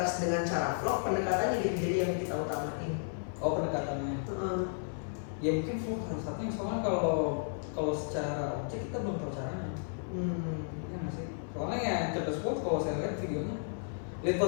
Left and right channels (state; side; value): silent; right; 55 dB below the other